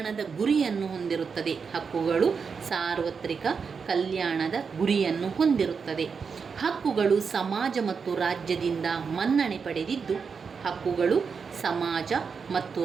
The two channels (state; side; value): quieter; left; 5.7 dB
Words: ಗುರಿಯನ್ನು ಹೊಂದಿರುತ್ತದೆ. ಹಕ್ಕುಗಳು ಸಾರ್ವತ್ರಿಕ ಕಲ್ಯಾಣದ ಗುರಿಯನ್ನು ಹೊಂದಿರುತ್ತದೆ. ಹಕ್ಕುಗಳು ಸಮಾಜ ಮತ್ತು ರಾಜ್ಯದಿಂದ ಮನ್ನಣೆ ಪಡೆದಿದ್ದು. ಹಕ್ಕುಗಳು ಸಮಾಜ ಮತ್ತು